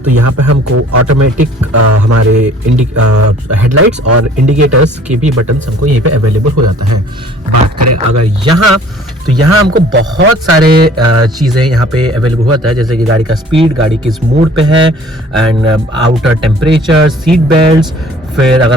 तो यहाँ पे हमको ऑटोमेटिक हमारे हेडलाइट्स और इंडिकेटर्स के भी बटन्स हमको यहीं पे अवेलेबल हो जाता है। बात करें अगर यहाँ तो यहाँ हमको बहुत सारे चीज़ें यहाँ पे अवेलेबल होता है, जैसे कि गाड़ी का स्पीड, गाड़ी किस मोड पे है and outer temperature, seat belts. फिर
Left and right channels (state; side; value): normal; both; correlation 0.52